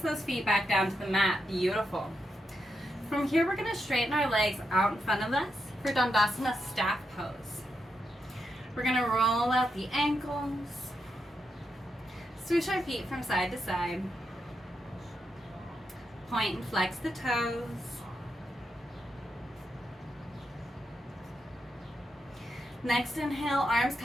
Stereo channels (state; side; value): normal; both; correlation 0.84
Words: feet back down to the mat. Beautiful. From here, we're going to straighten our legs out in front of us for Dandasana staff pose. We're going to roll out the ankles. Swoosh our feet from side to side. Point and flex the toes. Next inhale, arms